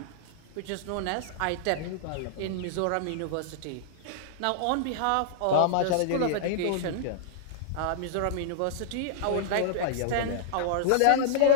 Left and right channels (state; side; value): different; both; correlation -0.01